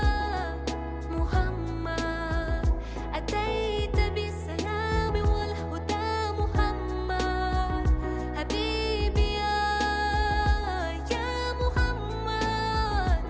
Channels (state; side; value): identical; both; correlation 1.00